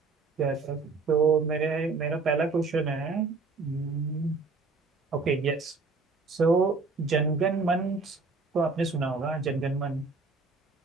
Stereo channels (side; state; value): left; quieter; 4.2 dB